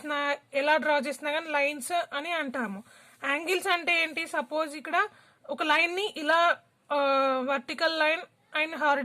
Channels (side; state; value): both; identical; correlation 1.00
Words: చేసినా కానీ లైన్స్ అని అంటాము. యాంగిల్స్ అంటే ఏంటి? సపోజ్ ఇక్కడ ఒక లైన్ని ఇలా vertical line and